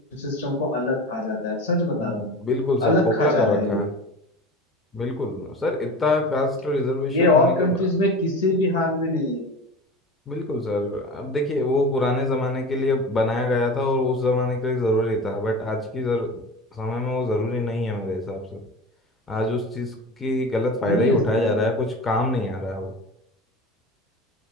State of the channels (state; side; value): normal; both; correlation 0.32